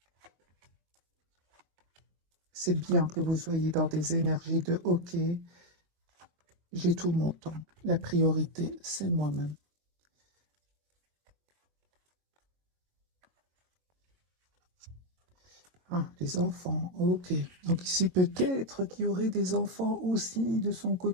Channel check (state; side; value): late; left; 22 ms